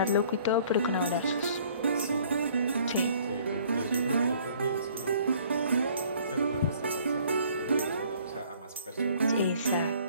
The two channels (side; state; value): both; inverted; correlation -0.57